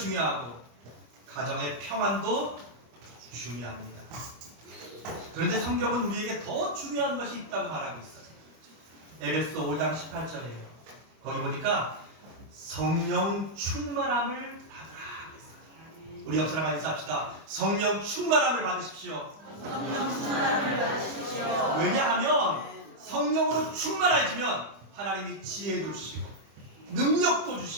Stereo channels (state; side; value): late; left; 25 ms